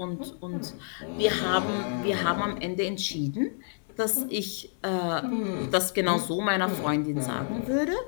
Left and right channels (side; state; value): right; silent; digital silence